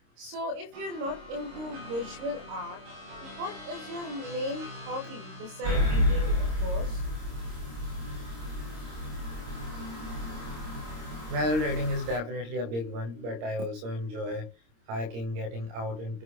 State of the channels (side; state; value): left; late; 26 ms